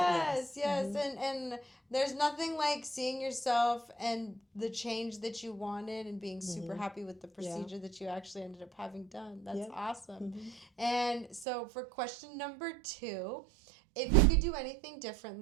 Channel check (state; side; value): drops out; left; at 11.5 s